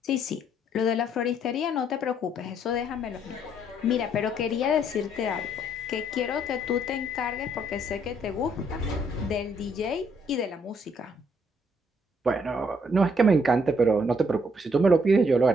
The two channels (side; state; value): both; normal; correlation 0.68